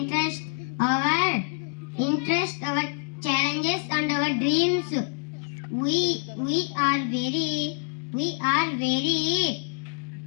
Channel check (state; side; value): silent; right; 61 dB below the other